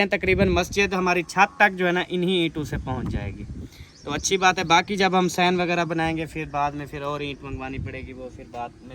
हैं तकरीबन मस्जिद हमारी छत तक जो है ना इन्हीं ईंटों से पहुंच जाएगी, तो अच्छी बात है। बाकी जब हम सैन वगैरह बनाएंगे फिर बाद में फिर और ईंट मंगवानी पड़ेगी, वो फिर बाद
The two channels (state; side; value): identical; both; correlation 1.00